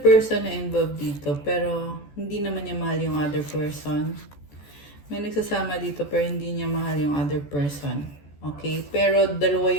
na involved dito, pero hindi naman niya mahal yung other person. May nagsasama dito, pero hindi niya mahal yung other person. Okay? Pero dalawa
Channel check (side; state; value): right; late; 14 ms